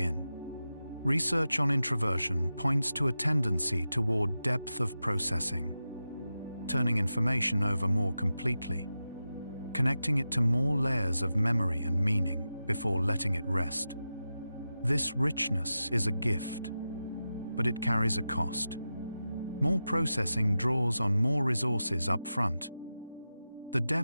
Research on introversion points to a tendency toward depth of processing, turning information over more completely, connecting it to more layers of memory and meaning before letting it rest. This richness is a gift, but it carries a cost. More processing draws on more resources up front. The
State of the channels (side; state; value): both; inverted; correlation -0.92